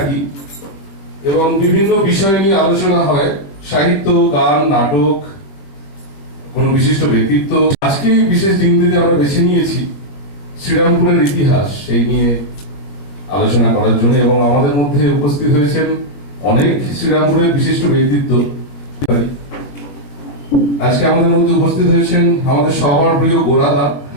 এবং বিভিন্ন বিষয় নিয়ে আলোচনা হয়, সাহিত্য, গান, নাটক, কোনো বিশিষ্ট ব্যক্তিত্ব। আজকে বিশেষ দিনটিতে আমরা বেছে নিয়েছি শ্রীরামপুরের ইতিহাস সেই নিয়ে আলোচনা করার জন্য, এবং আমাদের মধ্যে উপস্থিত হয়েছেন অনেক শ্রীরামপুরের বিশিষ্ট ব্যক্তিত্ব। আজকে আমাদের মধ্যে উপস্থিত হয়েছেন আমাদের সবার প্রিয় গোরাদা।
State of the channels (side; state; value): right; late; 20 ms